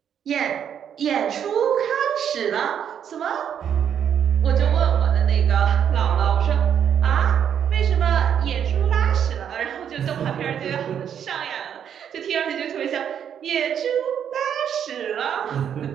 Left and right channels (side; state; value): left; quieter; 8.7 dB